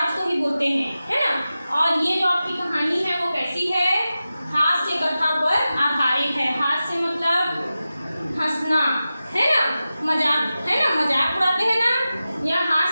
को ही बोलते हैं, है ना। और ये जो आपकी कहानी है वो कैसी है? हास्य कथा पर आधारित है। हास्य मतलब हंसना, है ना, मजाक, है ना, मजाक उड़ाते हैं ना, या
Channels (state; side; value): inverted; both; correlation -0.94